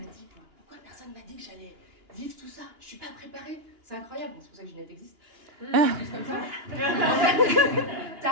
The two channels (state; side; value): late; left; 2.9 ms